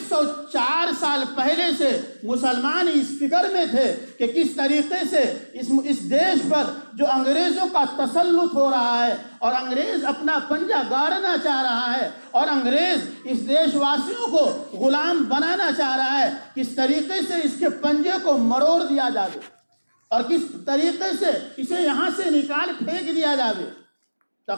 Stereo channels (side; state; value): both; inverted; correlation -1.00